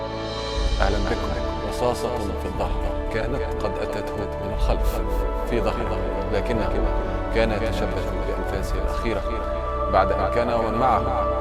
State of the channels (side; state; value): both; identical; correlation 1.00